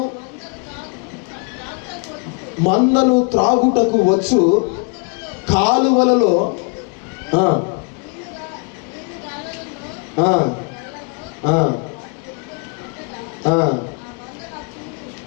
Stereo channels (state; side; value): quieter; right; 33.3 dB